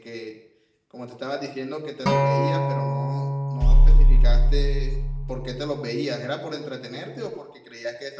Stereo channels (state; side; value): identical; both; correlation 1.00